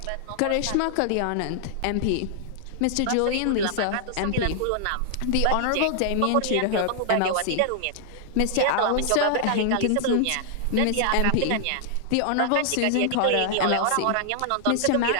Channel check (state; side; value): different; both; correlation -0.01